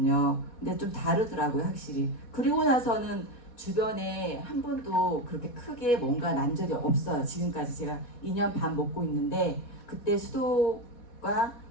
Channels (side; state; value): right; late; 4.2 ms